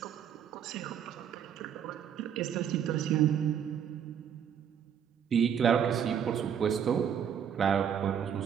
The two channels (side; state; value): left; quieter; 8.5 dB